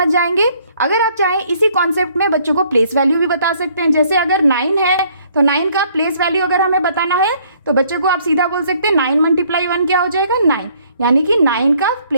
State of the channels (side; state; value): both; inverted; correlation -0.63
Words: जाएंगे। अगर आप चाहें इसी कॉन्सेप्ट में बच्चों को प्लेस वैल्यू भी बता सकते हैं। जैसे अगर 9 है तो 9 का प्लेस वैल्यू अगर हमें बताना है तो बच्चे को आप सीधा बोल सकते हैं 9 × 1 क्या हो जाएगा 9, यानी कि 9 का